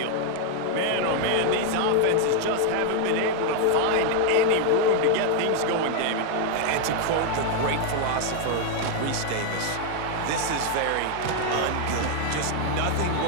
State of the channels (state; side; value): different; both; correlation 0.00